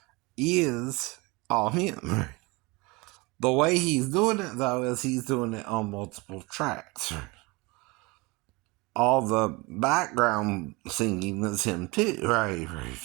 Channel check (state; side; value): quieter; left; 25.2 dB